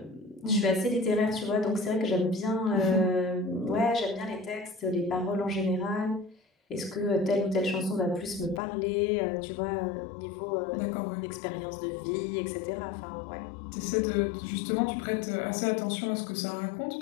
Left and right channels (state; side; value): drops out; right; at 8.6 s